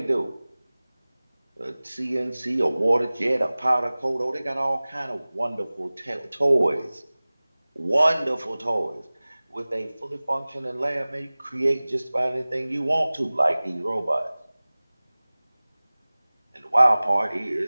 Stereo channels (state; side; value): inverted; both; correlation -0.99